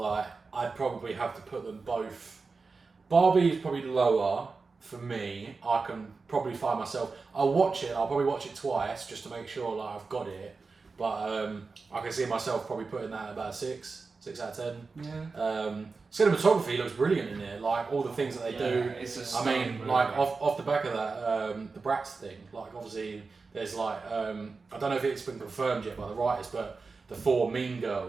I'd probably have to put them both. Barbie is probably lower for me. I can probably find myself. I'll probably watch it twice just to make sure like I've got it. But I can see myself probably putting that at about 6 out of 10. Yeah. Cinematography looks brilliant in it. Like all the things that they do. It's a I mean, stunning like movie. off the back of that, the Bratz thing. Like obviously, there's like I don't know if it's been confirmed yet by the writers, but the 4 Mean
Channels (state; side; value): quieter; left; 4.3 dB